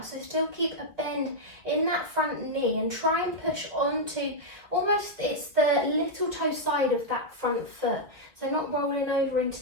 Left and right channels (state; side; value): late; left; 2.1 ms